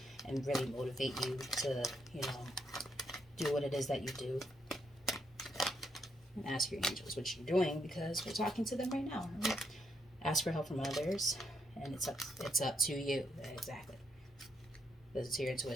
and really motivate you to, you know, do what it is that you do. And ask your angels what you're doing, because we're talking to them right now. Right? Ask for help from others, and it's up to you. Exactly. It's to your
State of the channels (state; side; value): normal; both; correlation 0.77